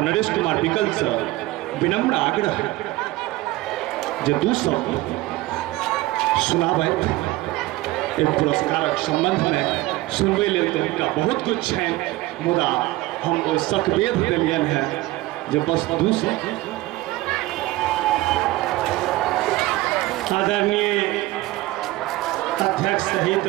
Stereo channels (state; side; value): quieter; left; 18.5 dB